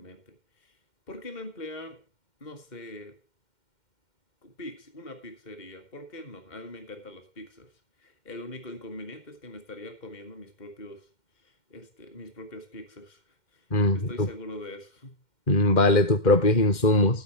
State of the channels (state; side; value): late; right; 2.1 ms